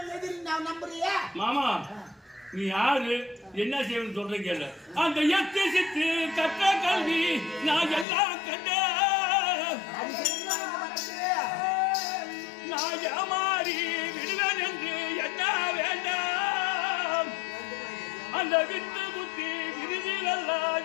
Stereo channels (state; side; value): drops out; right; at 8.1 s